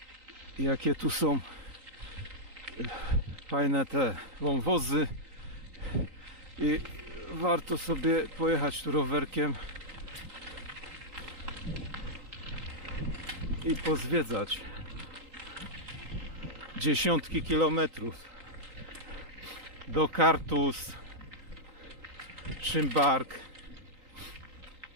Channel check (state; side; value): late; left; 3.9 ms